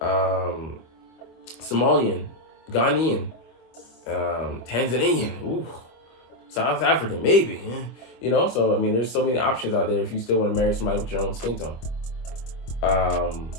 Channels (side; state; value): right; late; 25 ms